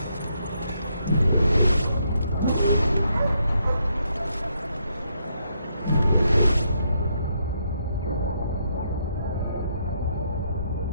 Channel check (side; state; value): both; inverted; correlation -0.76